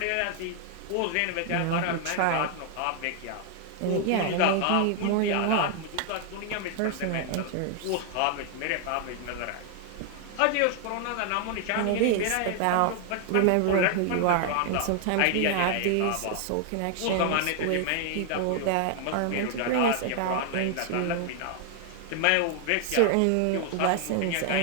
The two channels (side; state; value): both; different; correlation 0.00